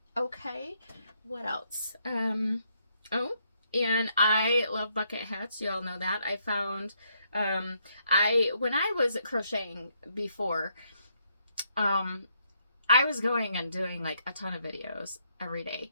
Okay, what else? Oh, and I love bucket hats. You all know that. I found, when I was crocheting before, I was going and doing like a ton of videos every day.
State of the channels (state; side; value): inverted; both; correlation -0.75